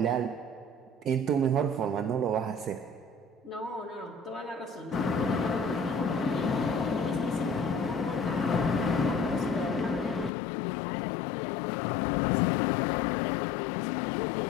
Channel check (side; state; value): right; drops out; at 10.3 s